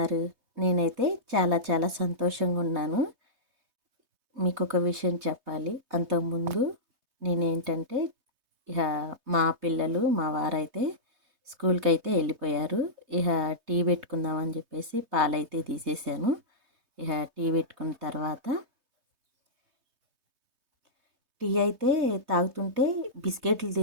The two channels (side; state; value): left; late; 3.2 ms